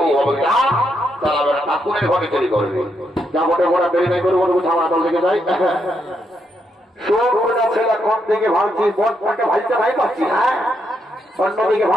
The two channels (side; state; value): both; normal; correlation 0.79